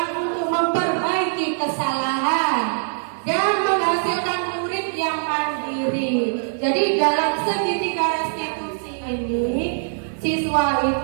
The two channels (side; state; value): left; silent; digital silence